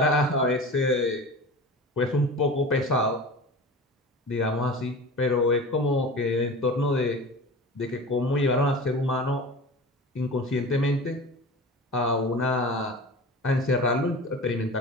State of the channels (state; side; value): normal; both; correlation 0.34